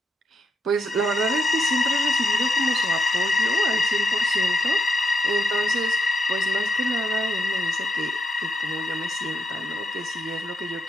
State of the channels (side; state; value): both; normal; correlation 0.81